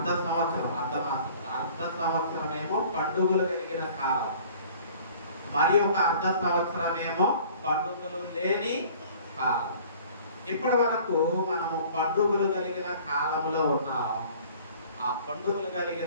అర్ధ సంవత్సరమేమో పండుగలు కలిగిన కాలం, మరి ఒక అర్ధ సంవత్సరమేమో పండుగలు లేని కాలం. ఇప్పటి వరకు మనము పండుగలు కలిగిన కాలంలో ఉన్నాం. ఆ పండుగలు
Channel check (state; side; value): inverted; both; correlation -0.50